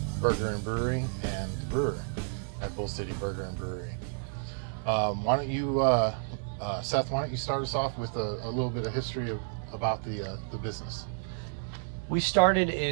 Burger and Brewery and brewer at Bull City Burger and Brewery. Why don't you, Seth? Why don't you start us off with a little bit of history about the business? We started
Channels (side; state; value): left; silent; digital silence